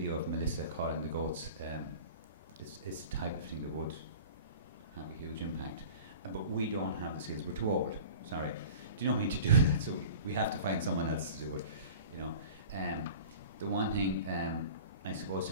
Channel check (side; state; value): both; inverted; correlation -0.40